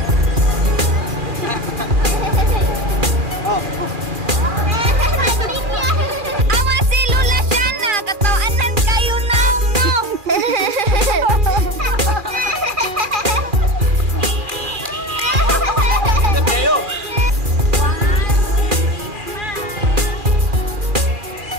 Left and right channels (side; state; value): left; late; 2.4 ms